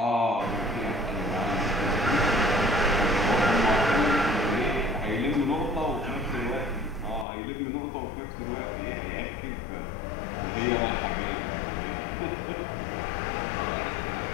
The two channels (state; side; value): drops out; right; at 7.2 s